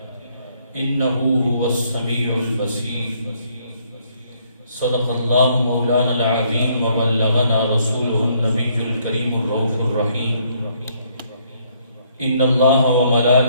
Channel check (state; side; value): inverted; both; correlation -0.68